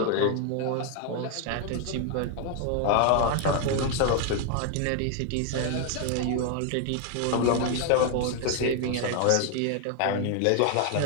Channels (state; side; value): different; both; correlation 0.00